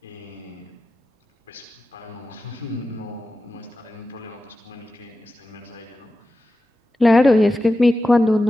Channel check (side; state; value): both; normal; correlation 0.92